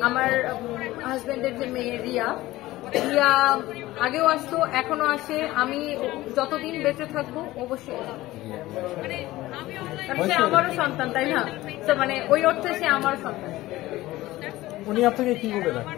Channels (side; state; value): right; quieter; 17.3 dB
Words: আমার হাজবেন্ডের যে মেয়ে রিয়া আগেও আসতো, এখনো আসে। আমি যতদিন বেঁচে থাকবো অবশ্যই, সে আমারও সন্তান, তাই না? তো মানে ওই অর্থে সে আমার সন্তান। উনি আপনাকে কি বলে